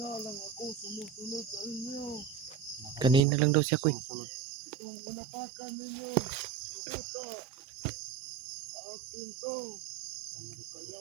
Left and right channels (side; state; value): left; drops out; at 3.2 s